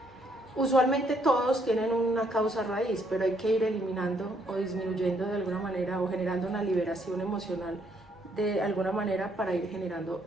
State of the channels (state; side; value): normal; both; correlation 0.70